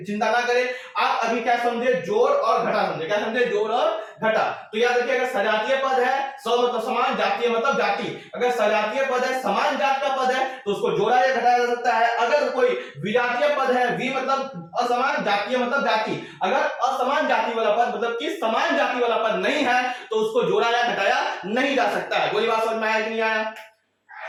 चिंता ना करें। आप अभी क्या समझे, जोड़ और घटा समझे, क्या समझे, जोड़ और घटा। तो याद रखिए अगर सजातीय पद है, सौ मतलब समान, जातीय मतलब जाति, अगर सजातीय पद है, समान जात का पद है तो उसको जोड़ा या घटाया जा सकता है। अगर कोई विजातीय पद है, वि मतलब असमान, जातीय मतलब जाति, अगर असमान जाति वाला पद मतलब कि समान जाति वाला पद नहीं है तो उसको जोड़ा या घटाया नहीं जा सकता है। बोली बात समझ में आया कि नहीं आया,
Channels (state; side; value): identical; both; correlation 1.00